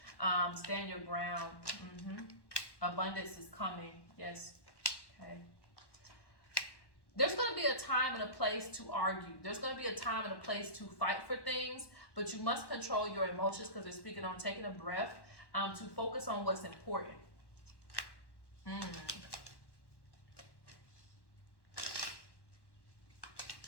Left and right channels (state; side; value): late; right; 1.1 ms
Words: Stand your ground. Abundance is coming. Yes. Okay. There's going to be a time and a place to argue. There's going to be a time and a place to fight for things, but you must control your emotions, because they're speaking on taking a breath to focus on what's important.